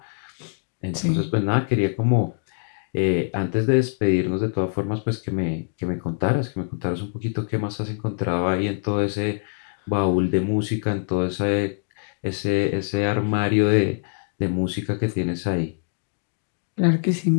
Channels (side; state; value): right; silent; digital silence